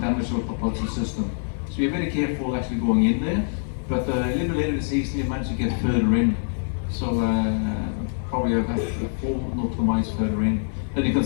our propulsion system. So we're very careful actually going in there, but a little bit later in the season we managed to get further in. So probably about 4 nautical miles further in. Then you can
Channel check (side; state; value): right; silent; 62 dB below the other